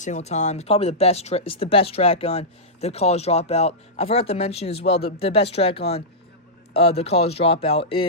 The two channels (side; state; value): both; normal; correlation -0.13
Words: time. It's probably the best. It's the best track on the College Dropout. I forgot to mention as well the best track on the College Dropout